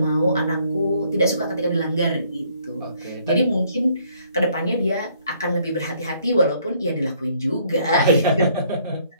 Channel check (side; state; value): both; inverted; correlation -0.65